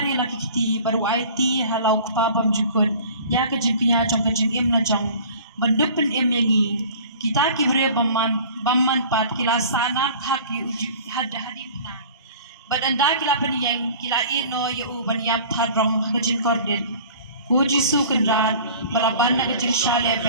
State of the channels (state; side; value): inverted; both; correlation -0.45